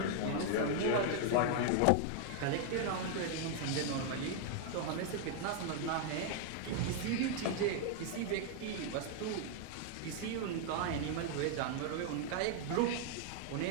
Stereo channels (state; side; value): different; both; correlation 0.00